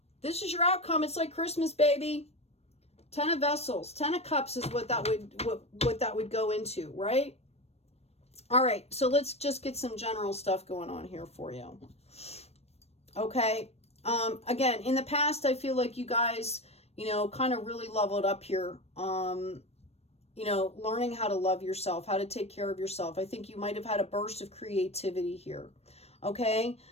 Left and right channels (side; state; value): right; late; 0.30 ms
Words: This is your outcome. It's like Christmas, baby. 10 of Vessels. 10 of Cups is what that would go into, right? All right. So let's just get some general stuff going on here for you. Okay. Again, in the past, I feel like you guys, kind of really leveled up here. Learning how to love yourself, how to take care of yourself. I think you might have had a burst of creativity here. Okay.